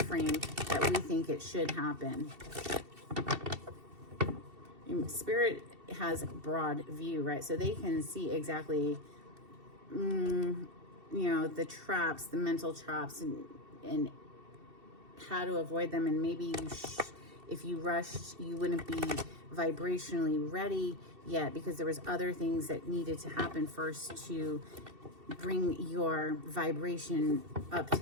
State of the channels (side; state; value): left; late; 2.7 ms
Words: that we think it should happen. Spirit has broad view, right? So they can see exactly, you know, the traps, the mental traps, and how to avoid them. And maybe if you rushed, you wouldn't be vibrationally ready yet, because there was other things that needed to happen first to bring your vibration up to